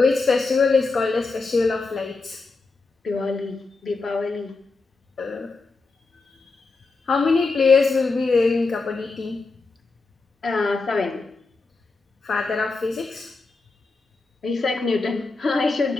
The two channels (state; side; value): quieter; right; 3.8 dB